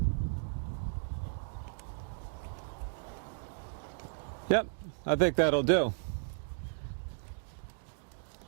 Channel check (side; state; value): left; silent; digital silence